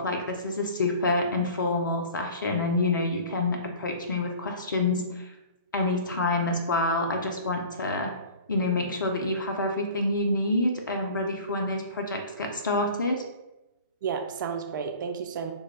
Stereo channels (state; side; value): inverted; both; correlation -0.41